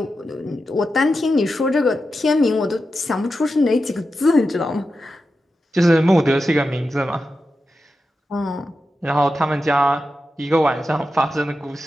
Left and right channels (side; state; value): both; normal; correlation 0.90